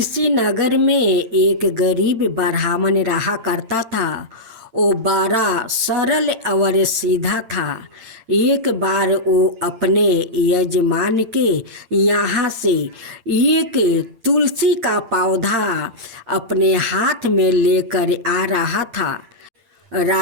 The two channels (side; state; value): left; late; 8.8 ms